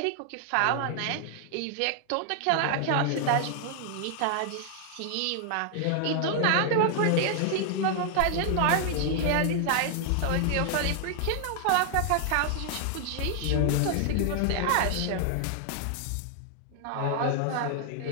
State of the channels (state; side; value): different; both; correlation 0.00